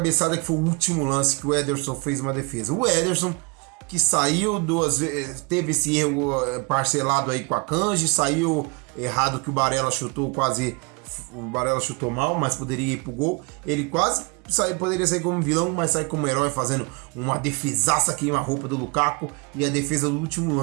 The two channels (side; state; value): left; quieter; 30.7 dB